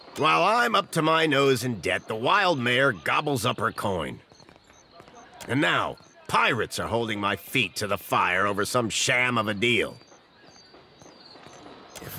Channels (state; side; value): identical; both; correlation 1.00